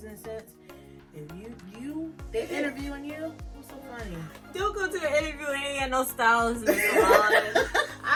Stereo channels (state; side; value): identical; both; correlation 1.00